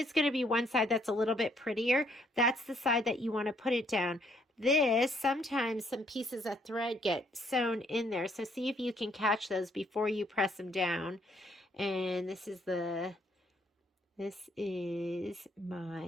going to be one side that's a little bit prettier. That's the side that you want to put it down. This, sometimes some pieces of thread get sewn in there. So see if you can catch those before you press them down. And this is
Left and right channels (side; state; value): both; normal; correlation 0.68